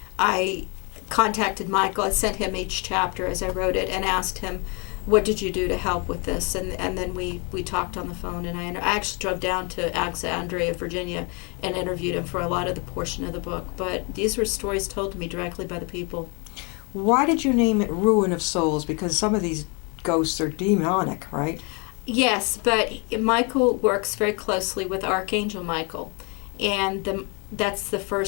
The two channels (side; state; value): right; quieter; 32.6 dB